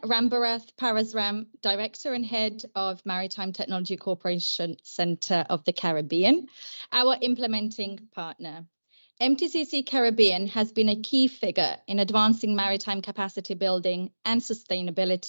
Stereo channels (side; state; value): both; inverted; correlation -1.00